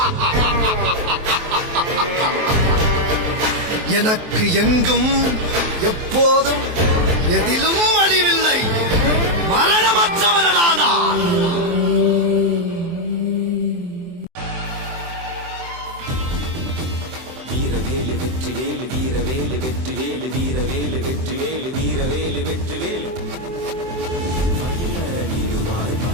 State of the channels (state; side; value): late; left; 23 ms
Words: எனக்கு எங்கும் எப்போதும் எதிலும் அழிவில்லை. மரணமற்றவனடா நான். வீரவேலு வெற்றி வேலு வீரவேலு வெற்றி வேலு வீரவேலு வெற்றி வேலு வீரவேலு வெற்றி வேலு மயிலடிவாய்